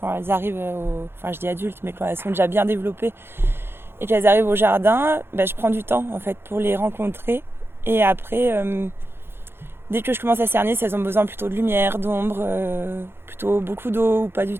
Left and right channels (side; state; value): left; late; 0.11 ms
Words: elles arrivent je dis adultes, mais quand elles sont déjà bien développées et qu'elles arrivent au jardin, je prends du temps en fait pour les rencontrer. Et après, dès que je commence à cerner si elles ont besoin plutôt de lumière, d'ombre, plutôt beaucoup d'eau ou pas du